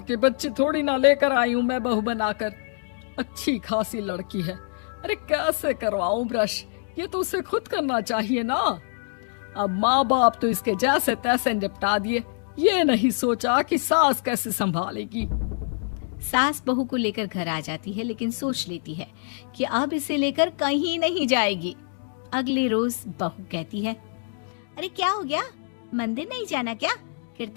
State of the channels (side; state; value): right; silent; digital silence